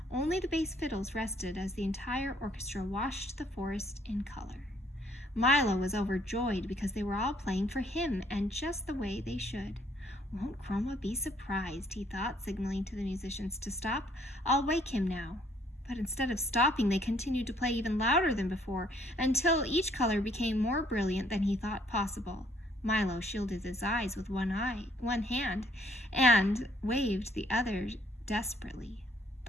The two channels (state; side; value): normal; both; correlation 0.65